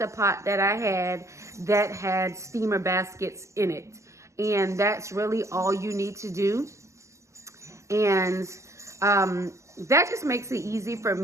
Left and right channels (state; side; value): late; left; 0.14 ms